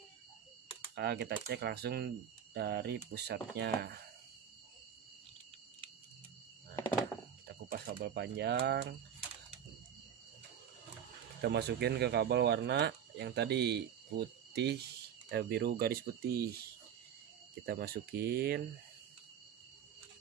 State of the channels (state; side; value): quieter; left; 8.8 dB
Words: kita cek langsung dari pusatnya. Nah, kita kupas kabel panjang, kita masukin ke kabel warna yang tadi putih, biru garis putih. Kita masukin.